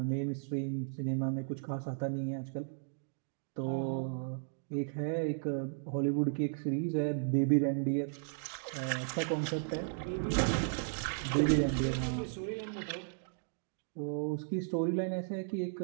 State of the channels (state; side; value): silent; left; digital silence